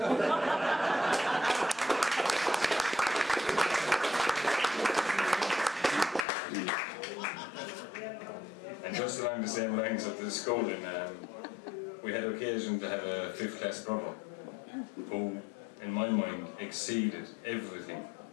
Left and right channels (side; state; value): right; drops out; at 6.2 s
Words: And just along the same lines of the schooling, we had occasion to have a 5th class brother who, in my mind, exceeded everything